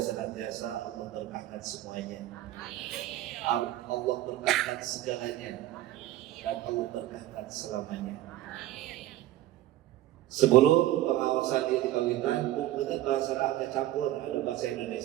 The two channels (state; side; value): quieter; left; 14.5 dB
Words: senantiasa Allah berkahkan semuanya. Allah berkahkan segalanya dan Allah berkahkan selamanya. Sebelum pengawasan ini dipanggilkan, mungkin bahasa agak campur, ada bahasa